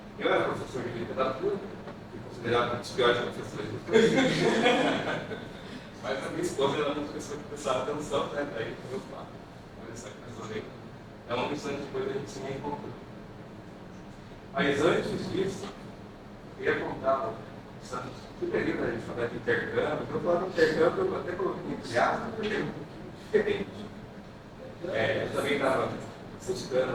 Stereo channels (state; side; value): identical; both; correlation 1.00